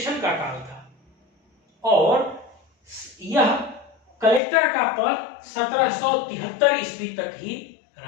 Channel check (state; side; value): drops out; right; at 4.4 s